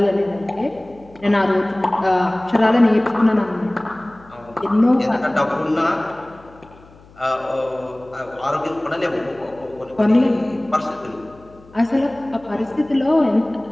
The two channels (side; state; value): left; noise; hum, 24 dB below the sound